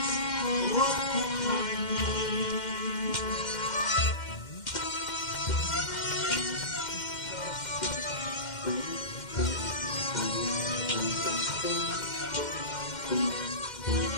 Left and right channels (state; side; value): late; right; 2.1 ms